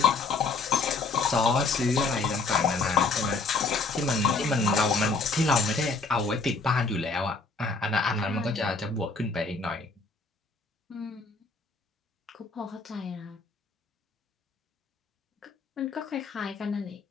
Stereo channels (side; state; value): right; quieter; 3.9 dB